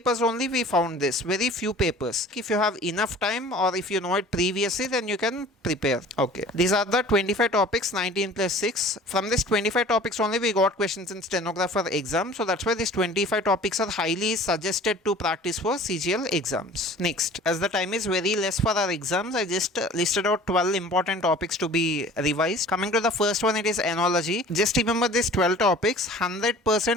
only we found this. Very few papers. If you have enough time or if you know it previously, then you can prepare. Okay. These are the 25 topics, 19 plus 6. From this 25 topics only we got questions in stenographer exam. So that's why these 25 topics are highly suggested to practice for CGL exams. Next, as the time is very less for our exams, I just listed out 12 important topics to be revised. Coming to the first one, it is enology. Just remember these 12 topics.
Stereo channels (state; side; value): normal; both; correlation 0.45